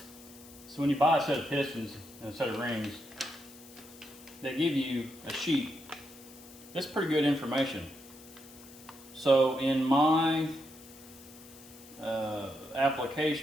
So when you buy a set of pistons and a set of rings, they give you a sheet. That's pretty good information. So in my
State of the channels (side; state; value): left; noise; hiss, 20 dB below the sound